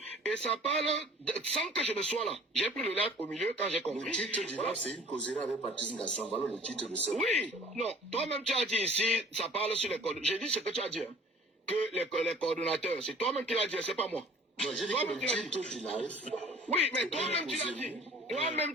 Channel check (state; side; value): normal; both; correlation 0.49